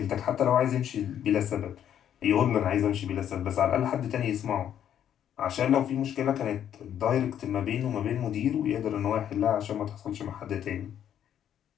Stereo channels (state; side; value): quieter; right; 9.9 dB